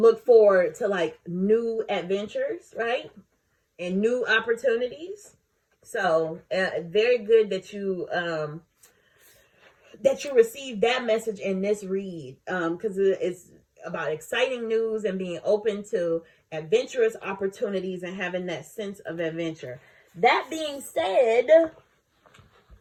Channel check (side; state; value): both; identical; correlation 1.00